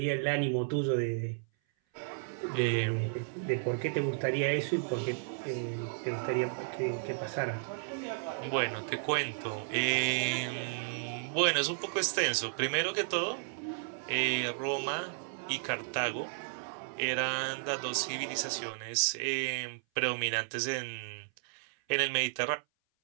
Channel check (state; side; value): silent; left; 56 dB below the other